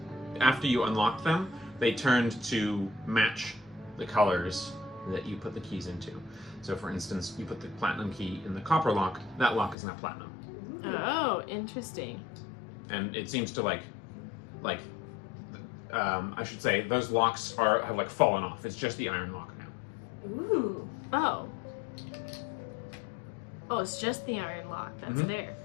After you unlocked them, they turned to match the colors that you put the keys into. So, for instance, you put the platinum key in the copper lock. That lock is now platinum, Oh, interesting. and it seems to I should say those locks have like fallen off. It's just the iron lock now. Ooh. Oh. Oh, it's just the iron lock that's Mhm. there.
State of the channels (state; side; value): drops out; right; at 9.8 s